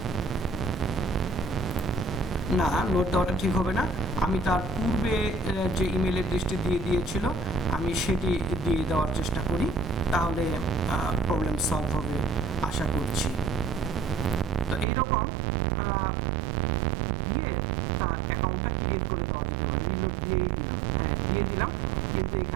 না, লোড দেওয়াটা ঠিক হবে না। আমি তার পূর্বে যে ইমেল অ্যাড্রেসটি দিয়ে দিয়েছিল আমি সেটি দিয়ে দেওয়ার চেষ্টা করি, তাহলে প্রবলেম সলভ হবে আশা করছি। তো এইরকম দিয়ে তার অ্যাকাউন্টটা ক্রিয়েট করে দেওয়া যেতে পারে। রিলোড দিয়েই দিলাম, হ্যাঁ দিয়ে দিলাম, কিন্তু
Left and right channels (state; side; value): drops out; left; at 14.9 s